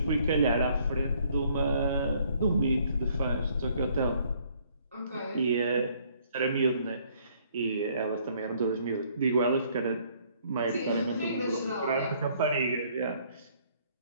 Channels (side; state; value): both; inverted; correlation -0.63